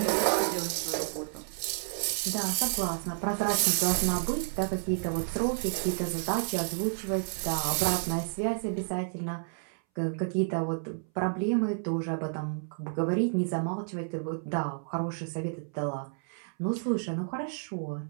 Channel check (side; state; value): left; silent; 57 dB below the other